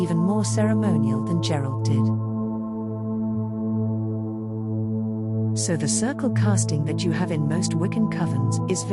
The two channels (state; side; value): identical; both; correlation 1.00